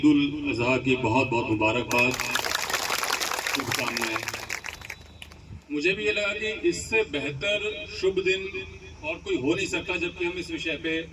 उल अजहा की बहुत बहुत मुबारकबाद, शुभकामनाएं। मुझे भी ये लगा कि इससे बेहतर शुभ दिन और कोई हो नहीं सकता जबकि हम इस विषय पे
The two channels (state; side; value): identical; both; correlation 1.00